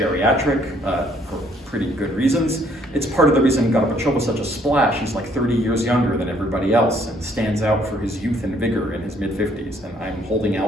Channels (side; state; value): both; normal; correlation 0.65